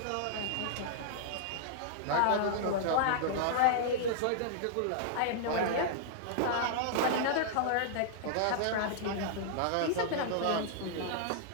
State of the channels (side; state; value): both; different; correlation -0.01